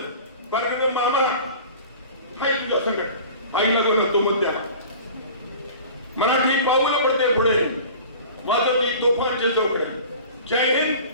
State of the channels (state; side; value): inverted; both; correlation -0.41